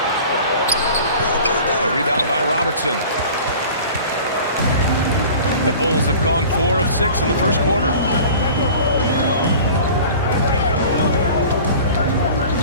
A rebound by Robertson. The Bulls have gone 4 of 6 in the first quarter.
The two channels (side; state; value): both; inverted; correlation -0.42